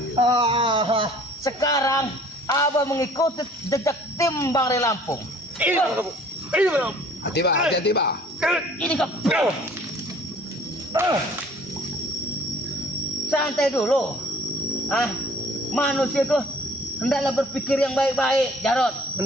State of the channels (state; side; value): normal; both; correlation 0.53